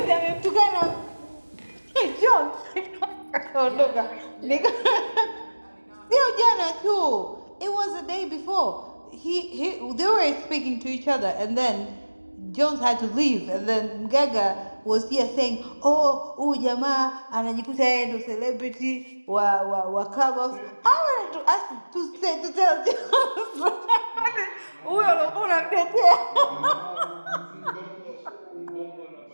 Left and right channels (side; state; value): both; inverted; correlation -1.00